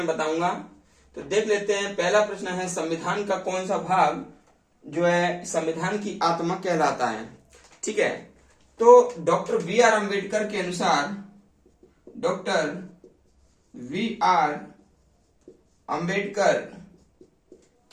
बताऊंगा। तो देख लेते हैं। पहला प्रश्न है, संविधान का कौन सा भाग जो है संविधान की आत्मा कहलाता है। ठीक है, तो डॉक्टर बी आर अम्बेडकर के अनुसार, डॉक्टर वी आर अम्बेडकर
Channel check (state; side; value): identical; both; correlation 1.00